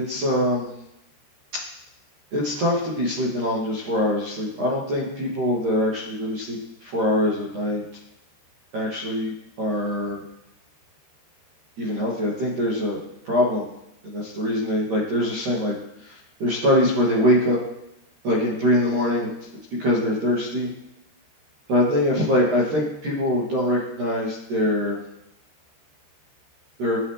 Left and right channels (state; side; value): late; left; 13 ms